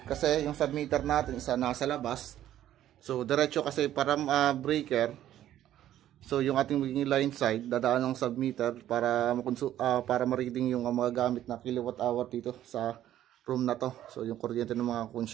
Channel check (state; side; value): quieter; left; 12.2 dB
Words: Kasi yung submeter natin isa nasa labas. So, diretso kasi para breaker. So, yung ating magiging line side, dadaan ng submeter para ma-reading yung mga gamit na kilowatt hour dito sa room na to. So, yung kuryente ng mga